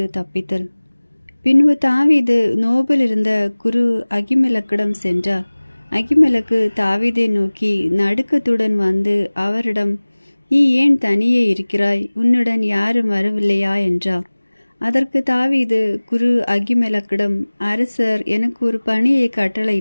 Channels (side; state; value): both; inverted; correlation -1.00